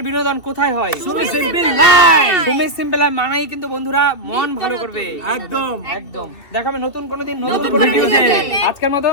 বিনোদন কোথায় হয়? Sumi simple life. Sumi simple মানাই কিন্তু বন্ধুরা মন ভালো করবে। একদম একদম দেখাবে নতুন কোনো দিন নতুন নতুন কোনো ভিডিওতে। ভিডিওতে। আজকের মতো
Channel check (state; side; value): late; right; 2.7 ms